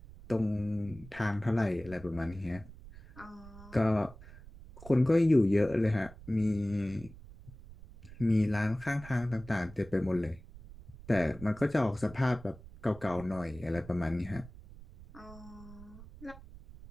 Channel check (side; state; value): right; noise; rumble, 18 dB below the sound